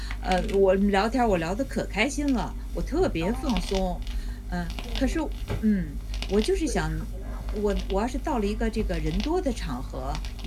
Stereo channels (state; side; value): identical; both; correlation 1.00